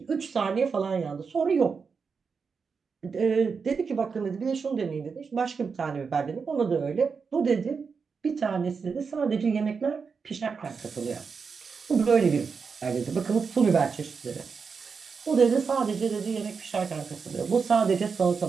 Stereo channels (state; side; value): quieter; left; 5.5 dB